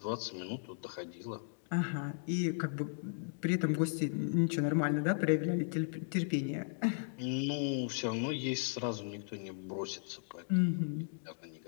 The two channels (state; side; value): silent; right; digital silence